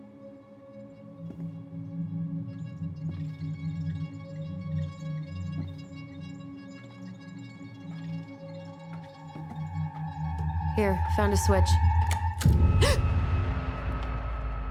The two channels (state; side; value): identical; both; correlation 1.00